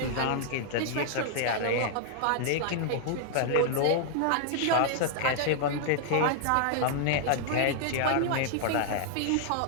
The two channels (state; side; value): different; both; correlation -0.01